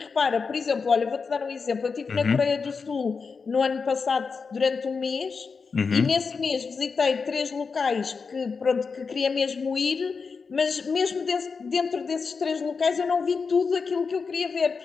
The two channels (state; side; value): quieter; right; 5.1 dB